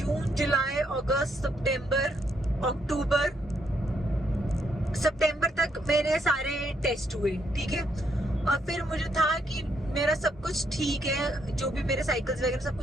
जुलाई, अगस्त, सितंबर, अक्टूबर, सितंबर तक मेरे सारे टेस्ट हुए, ठीक है। और फिर मुझे था कि मेरा सब कुछ ठीक है, जो भी मेरे साइकिल्स वगैरह सब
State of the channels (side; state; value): both; normal; correlation 0.74